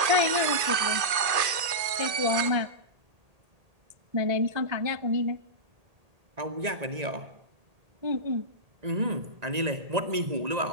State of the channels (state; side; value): late; left; 1.8 ms